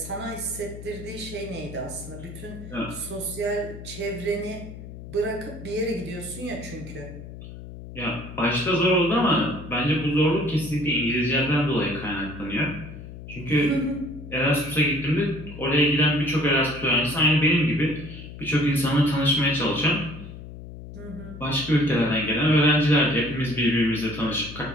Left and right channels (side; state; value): left; noise; hum, 13 dB below the sound